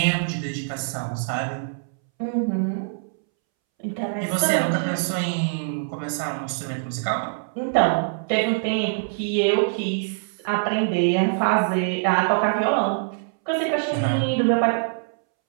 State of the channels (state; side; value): silent; left; 63 dB below the other